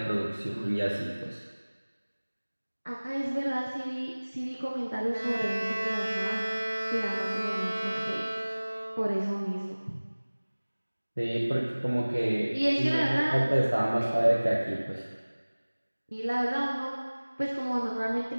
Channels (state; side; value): inverted; both; correlation -1.00